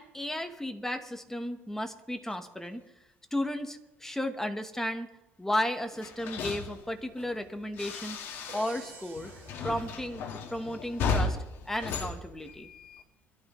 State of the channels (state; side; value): normal; both; correlation 0.79